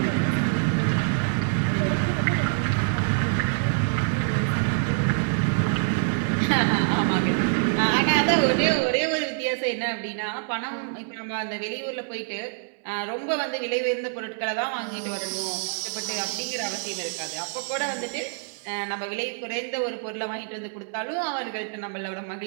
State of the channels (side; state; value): left; silent; 61 dB below the other